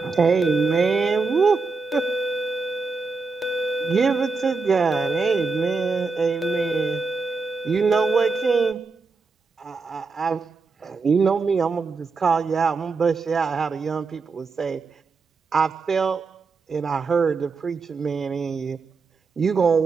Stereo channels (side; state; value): left; quieter; 4.4 dB